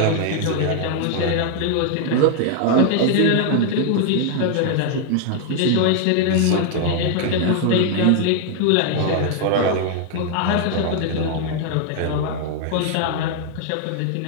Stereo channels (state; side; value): different; both; correlation 0.00